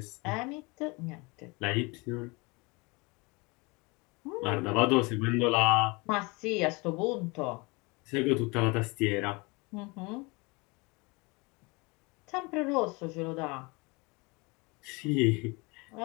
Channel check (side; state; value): right; quieter; 27.1 dB